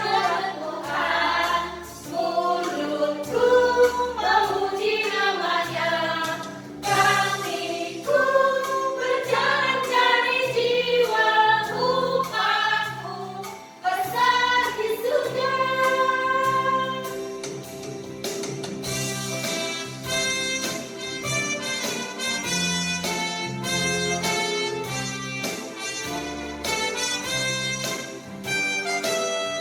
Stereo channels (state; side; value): identical; both; correlation 1.00